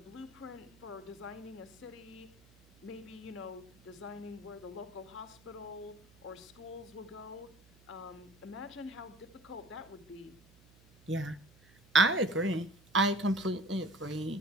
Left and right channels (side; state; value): right; noise; hum, 27 dB below the sound